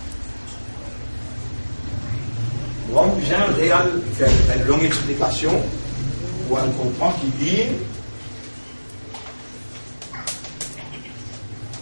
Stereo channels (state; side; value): inverted; both; correlation -1.00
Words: Donc, j'ai un réel, faire une longue explication où on comprend qu'il dit